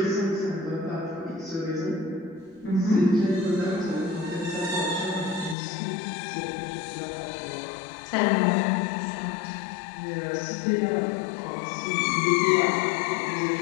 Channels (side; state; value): right; drops out; at 5.6 s